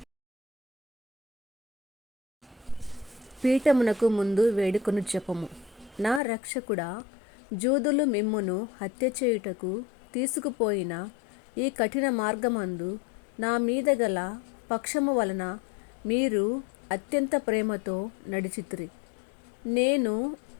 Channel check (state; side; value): drops out; right; at 6.2 s